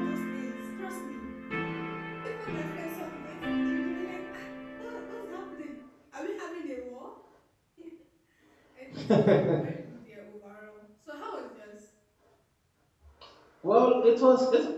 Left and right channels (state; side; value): identical; both; correlation 1.00